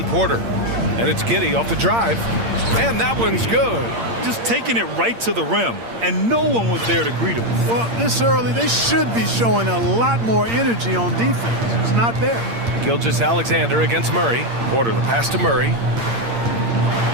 Porter. And it's Giddey off the drive. And that one's good. Just taking it right to the rim, and no one was there to greet him. Well, this early, they should be showing a lot more energy on defense. It's not there. Gilgeous-Alexander against Murray. Porter, the pass to Murray.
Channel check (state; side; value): late; left; 8.7 ms